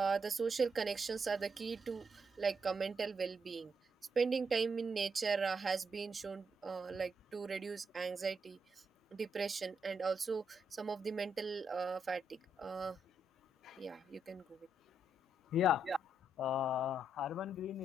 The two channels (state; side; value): normal; both; correlation 0.79